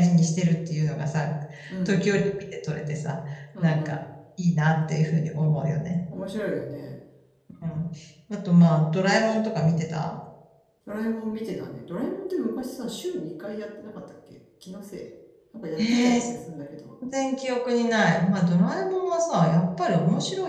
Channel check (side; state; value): both; identical; correlation 1.00